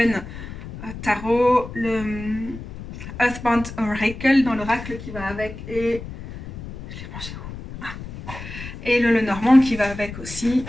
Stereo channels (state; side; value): noise; left; rumble, 11 dB below the sound